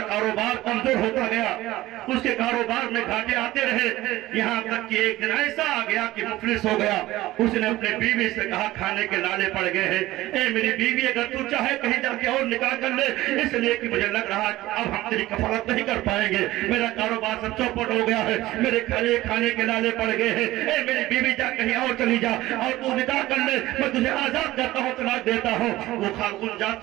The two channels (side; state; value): left; quieter; 16.9 dB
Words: کاروبار کمزور ہوتا گیا. اس کے کاروبار میں گھاٹے آتے رہے، یہاں تک کہ ایک دن ایسا آ گیا کہ مفلس ہو گیا. اس نے اپنے بیوی سے کہا کھانے کے لالے پڑ گئے ہیں، اے میری بیوی اگر تو چاہے کہیں جا کے اور نکاح کر لے، اس لیے کہ مجھے لگ رہا کہ اب ہم تیری کفالت نہیں کر پائیں گے، میرا کاروبار سب چوپٹ ہو گیا ہے، میرے کھانے کے لالے پڑ گئے ہیں. اے میری بیوی جا کہیں اور چلی جا اور تو نکاح کر لے، میں تجھے آزاد کرتا ہوں، طلاق دیتا ہوں. وہ خاتون